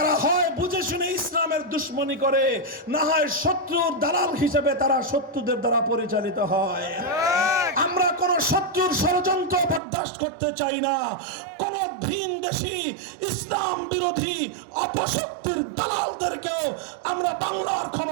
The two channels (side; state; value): left; drops out; at 9.8 s